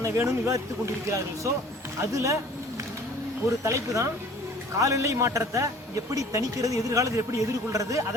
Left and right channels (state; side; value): normal; both; correlation 0.49